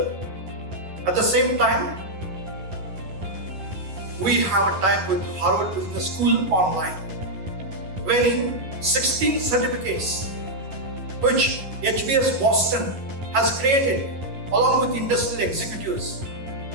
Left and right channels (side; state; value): left; late; 11 ms